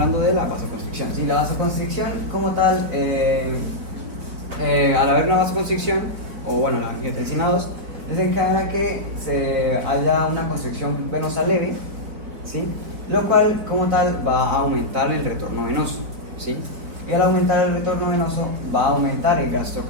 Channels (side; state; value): left; late; 4.5 ms